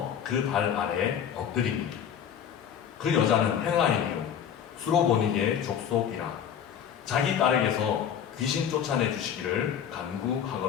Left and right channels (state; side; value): quieter; right; 8.7 dB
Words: 그 발 아래 엎드리니, 그 여자는 헬라인이요 수로보니게 족속이라 자기 딸에게서 귀신 쫓아내 주시기를